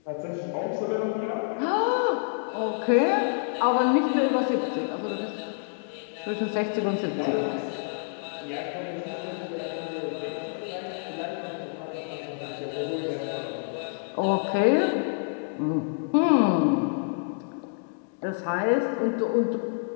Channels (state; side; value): silent; right; digital silence